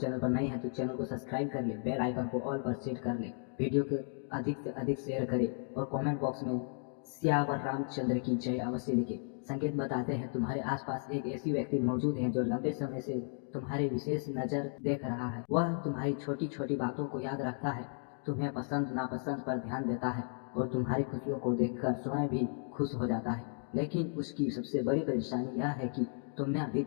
पर नए हैं तो चैनल को सब्सक्राइब कर ले, बेल आइकन को ऑल पर सेट कर ले, वीडियो को अधिक से अधिक शेयर करें और कमेंट बॉक्स में सियावर रामचंद्र की जय अवश्य लिखे। संकेत बताते हैं तुम्हारे आसपास एक ऐसी व्यक्ति मौजूद है जो लंबे समय से तुम्हारे विशेष नजर देख रहा है। वह तुम्हारी छोटी छोटी बातों को याद रखता है, तुम्हें पसंद नापसंद पर ध्यान देता है और तुम्हारी खुशियों को देखकर स्वयं भी खुश हो जाता है। लेकिन उसकी सबसे बड़ी परेशानी यह है कि तुमने अभी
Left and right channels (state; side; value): silent; right; 55 dB below the other